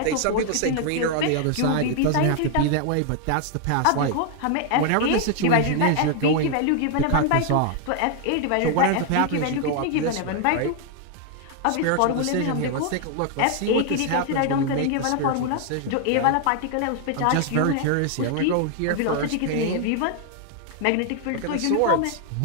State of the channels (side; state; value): both; different; correlation 0.00